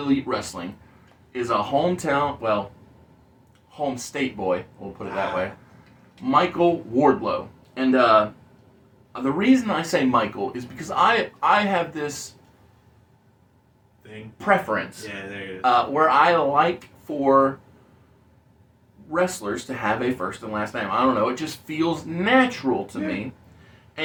Wrestling is a home state boy, we'll put it that way, Michael Wardlow. And the reason I say Michael is because I have this Thing. preference Yeah, there it is. where I like for wrestlers to have a first and last name. I don't know, it just feels natural to me.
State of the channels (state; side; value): identical; both; correlation 1.00